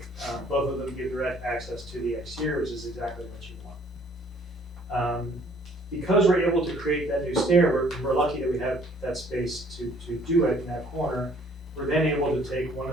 Both of them give direct access to the exterior, which is exactly what you want. Because we're able to create that new stair, we're lucky that we have that space to do it in that corner. We're then able to take one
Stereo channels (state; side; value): normal; both; correlation 0.59